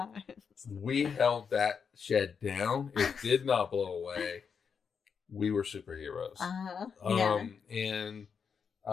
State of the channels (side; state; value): right; quieter; 6.4 dB